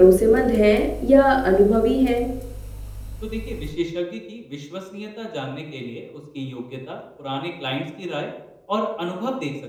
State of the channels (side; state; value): both; identical; correlation 1.00